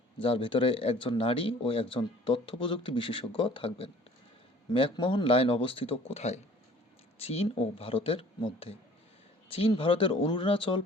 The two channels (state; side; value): normal; both; correlation 0.51